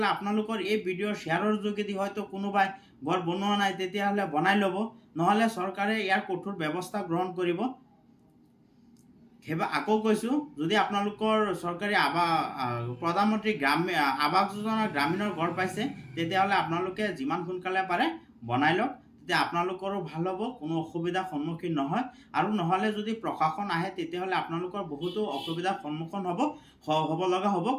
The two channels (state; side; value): identical; both; correlation 1.00